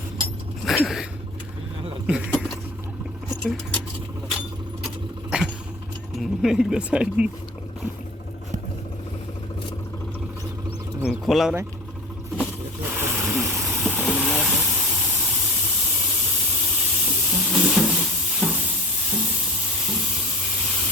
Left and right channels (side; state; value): both; normal; correlation 0.36